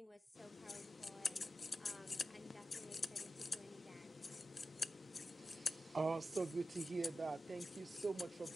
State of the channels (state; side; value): normal; both; correlation 0.92